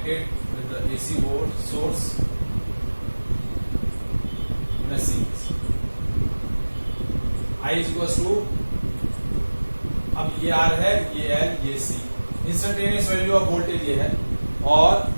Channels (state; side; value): inverted; both; correlation -1.00